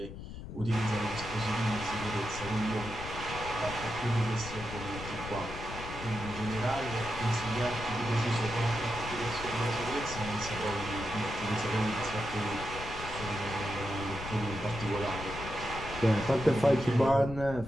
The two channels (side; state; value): left; noise; rumble, 10 dB below the sound